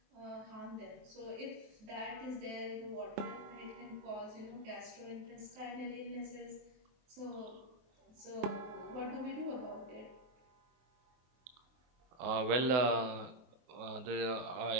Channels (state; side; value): late; left; 24 ms